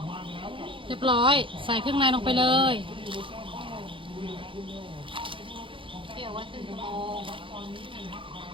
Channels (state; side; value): late; left; 0.25 ms